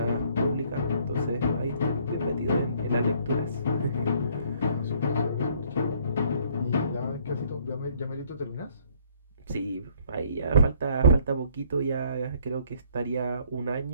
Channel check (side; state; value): both; inverted; correlation -0.62